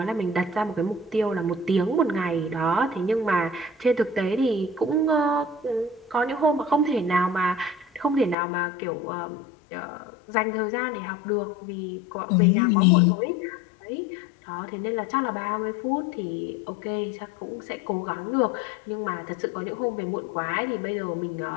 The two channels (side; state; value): right; drops out; at 8.3 s